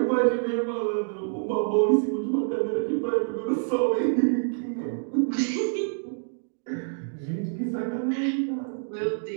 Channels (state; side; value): silent; left; digital silence